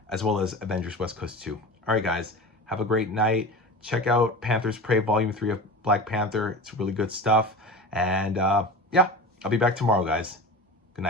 as well as Avengers West Coast 2. All right, guys, have a great night. Check out Panther's Prey Volume 3 of Black Panther. It's really good stuff. And yeah, I'll be back tomorrow, guys. Good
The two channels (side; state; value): both; normal; correlation 0.32